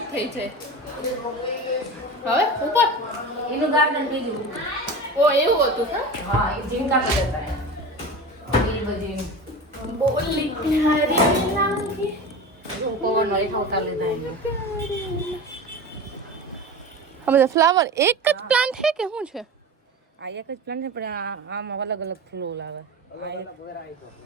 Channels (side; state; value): both; normal; correlation 0.30